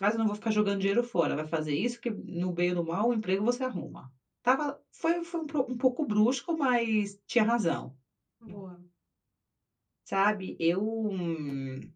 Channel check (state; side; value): identical; both; correlation 1.00